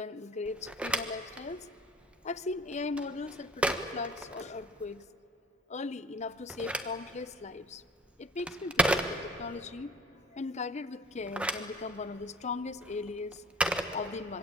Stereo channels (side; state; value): both; normal; correlation 0.48